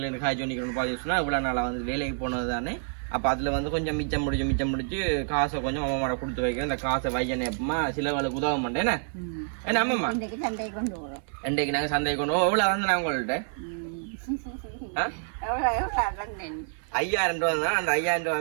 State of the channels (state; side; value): silent; left; 59 dB below the other